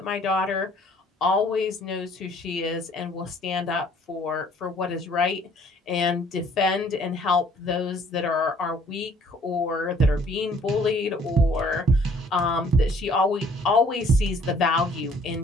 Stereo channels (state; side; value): normal; both; correlation 0.58